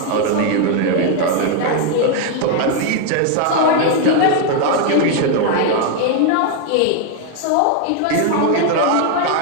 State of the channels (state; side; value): different; both; correlation 0.01